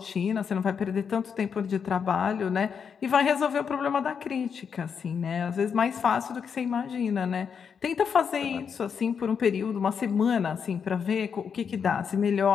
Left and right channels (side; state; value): right; quieter; 6.7 dB